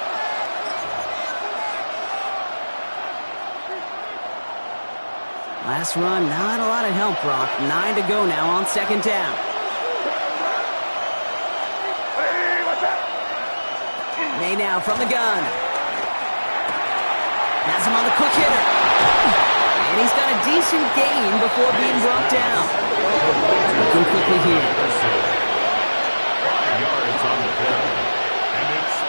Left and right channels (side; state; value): both; inverted; correlation -1.00